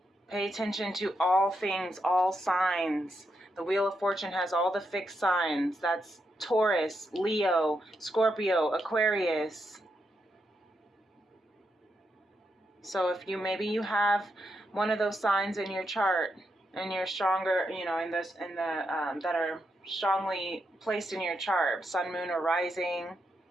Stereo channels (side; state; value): both; normal; correlation 0.82